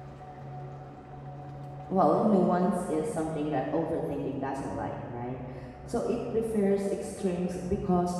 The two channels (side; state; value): both; identical; correlation 1.00